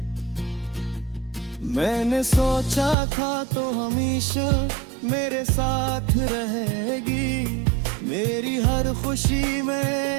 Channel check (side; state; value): left; drops out; at 3.0 s